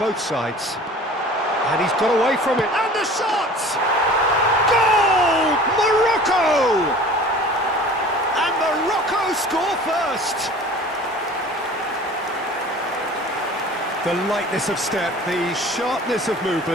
sides. And he's got away from it, and the shot! Goal! Morocco! And Morocco score first! The lightness of step, the sharpness of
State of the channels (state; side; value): normal; both; correlation 0.44